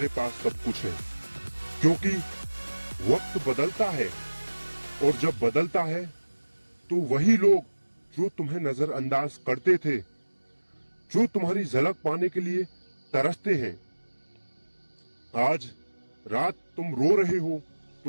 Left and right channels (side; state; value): both; inverted; correlation -1.00